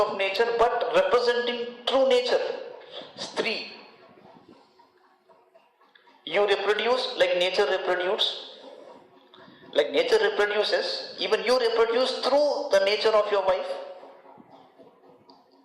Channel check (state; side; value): identical; both; correlation 1.00